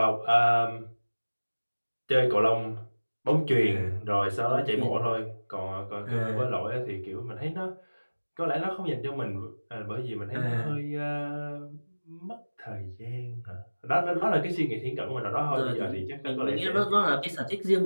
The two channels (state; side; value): inverted; both; correlation -1.00